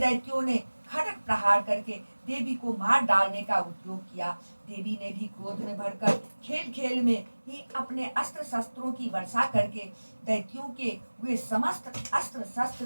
ने खड़ग प्रहार करके देवी को मार डालने का उद्योग किया। देवी ने भी क्रोध में भरकर खेल खेल में ही अपने अस्त्र शस्त्रों की वर्षा करके दैत्यों के वे समस्त अस्त्र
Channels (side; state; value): both; inverted; correlation -1.00